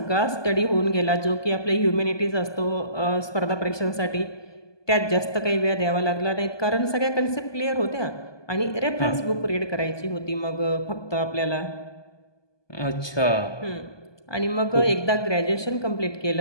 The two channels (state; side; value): late; right; 1.2 ms